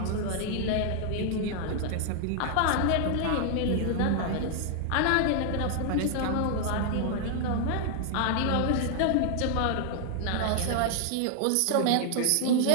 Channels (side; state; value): both; different; correlation 0.00